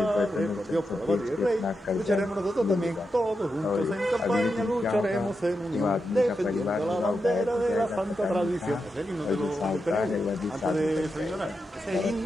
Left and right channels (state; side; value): normal; both; correlation 0.87